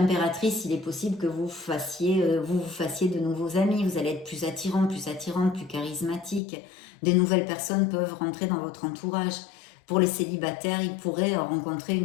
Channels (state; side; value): drops out; right; at 6.4 s